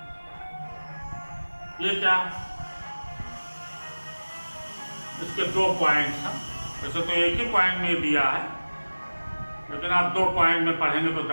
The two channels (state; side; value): inverted; both; correlation -1.00